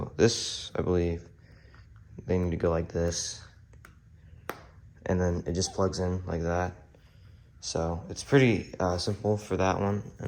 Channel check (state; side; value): identical; both; correlation 1.00